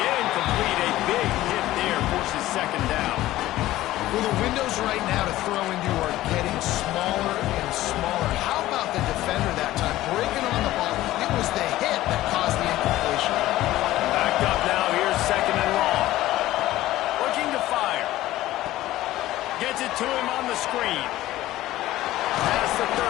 incomplete. A big hit there forces 2nd down. Well, the windows right now to throw into are getting smaller and smaller. How about the defender that time? Breaking on the ball. It was the hit that caused the incompletion. Backed up now. Here's 2nd and long. Looking to fire. Gets it to him on the screen. Past the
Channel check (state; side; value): quieter; right; 15.6 dB